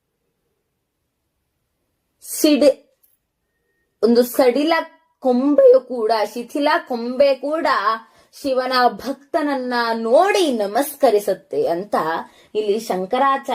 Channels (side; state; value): both; identical; correlation 1.00